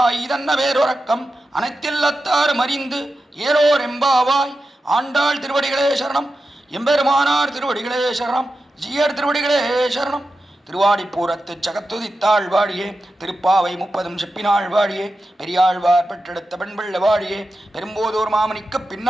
Idanna Verorakam, Anaithillathar Marindu, Yero Rembavai, Andal Tiruvadigalai Sharanam, Embermanar Tiruvadigalai Sharanam, ஜீயர் திருவடிகளே சரணம். திருவாடிப்பூரத்து சகத்துதித்தாள் வாழியே, திருப்பாவை 30 செப்பினாள் வாழியே, பெரியாழ்வார் பெற்றெடுத்த பெண்பிள்ள வாழியே, பெரும்போதோர் மாமணிக்கு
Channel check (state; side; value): normal; both; correlation 0.91